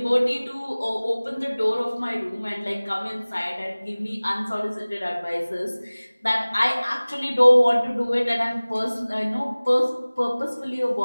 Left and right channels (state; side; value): inverted; both; correlation -1.00